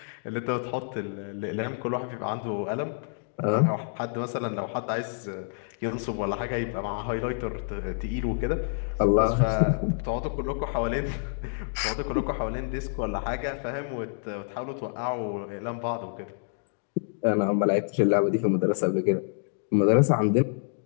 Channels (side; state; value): right; silent; digital silence